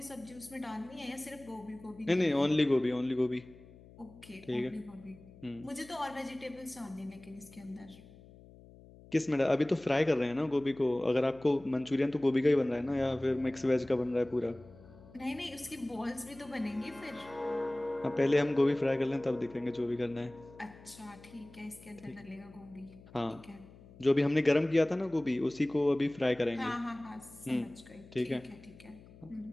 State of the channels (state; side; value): noise; left; hum, 21 dB below the sound